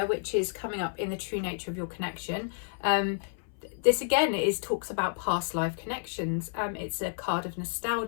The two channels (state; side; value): silent; right; 58 dB below the other